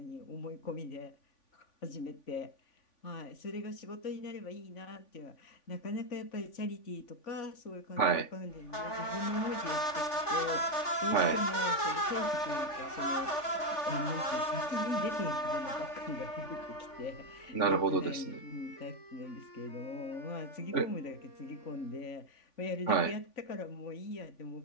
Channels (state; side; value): late; right; 3.5 ms